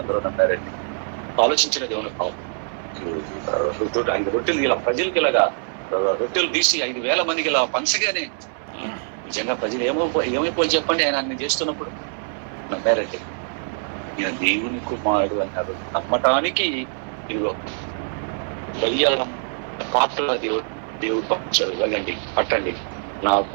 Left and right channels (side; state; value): left; silent; 63 dB below the other